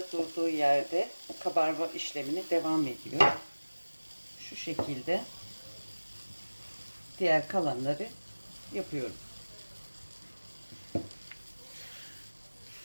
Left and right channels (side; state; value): both; inverted; correlation -1.00